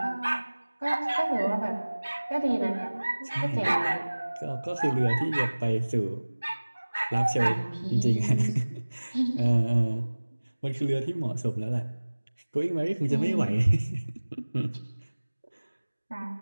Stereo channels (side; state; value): both; inverted; correlation -1.00